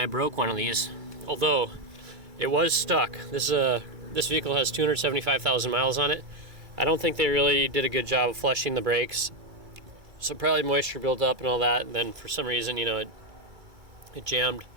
broke one of these. Although it was stuck. This vehicle has 275,000 miles on it. I don't think they really did a good job of flushing the brakes. So probably moisture built up and all that, and then for some reason, you know, it jammed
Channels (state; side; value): late; left; 2.3 ms